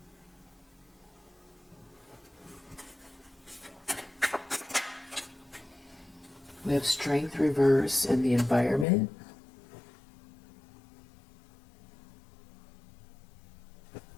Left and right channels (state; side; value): drops out; right; at 8.8 s